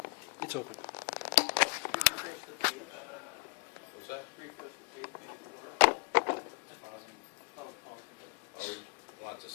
It's open. What's that? Or want the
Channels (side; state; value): right; quieter; 33.3 dB